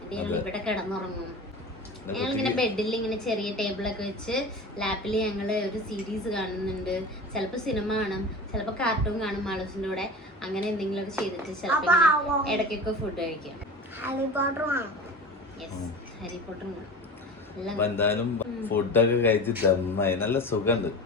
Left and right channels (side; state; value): both; normal; correlation 0.34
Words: ഞങ്ങൾ ഇവിടെ കിടന്നുറങ്ങും. ഞങ്ങളിങ്ങനെ ബെഡിൽ ഇങ്ങനെ ചെറിയ ടേബിളൊക്കെ വെച്ച് ലാപ്പിൽ ഞങ്ങള് ഒരു സീരീസ് കാണുന്നുണ്ട്. ചിലപ്പോ സിനിമ കാണും, ചിലപ്പോ കാർട്ടൂൺ കാണും മാളൂസിന്റെ കൂടെ. അങ്ങനെ എന്തെങ്കിലുമൊക്കെ ചെയ്തിട്ട് ചിലപ്പോ ഇടയ്ക്കൊക്കെ ഫുഡ് കഴിക്കാം. ഹാരി പോട്ടറും എന്തായാലും ഫുഡൊക്കെ കഴിച്ച് ദമ്മായി നല്ല സുഖമുണ്ട്.